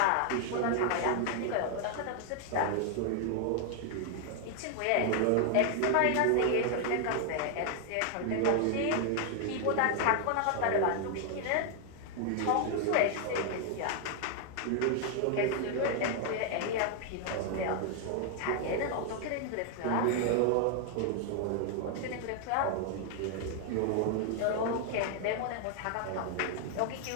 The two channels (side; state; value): both; different; correlation 0.00